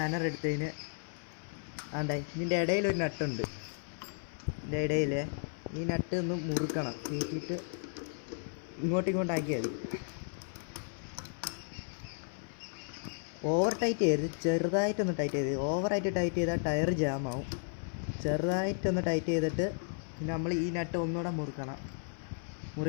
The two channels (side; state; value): right; silent; 55 dB below the other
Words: എടുത്തതിന് ഇതിൻ്റെ ഇടയിലൊരു നട്ടുണ്ട്. ഇതിൻ്റെ ഇടയിൽ ഈ നട്ട് ഒന്ന് മുറുക്കണം, കയറ്റിയിട്ട് ഇങ്ങോട്ടാക്കിയാൽ മതി. ഓവർ ടൈറ്റ് ചെയ്ത് ചെറുതായിട്ടൊന്ന് ടൈറ്റ് ചെയ്ത്, ഓവറായിട്ട് ടൈറ്റ് ചെയ്താൽ ടയർ ജാമാവും. ചെറുതായിട്ടൊന്ന് ടൈറ്റ് ചെയ്തിട്ട് പിന്നെ നമ്മൾ ഈ നട്ട് ഒന്നുകൂടെ മുറുക്കണം.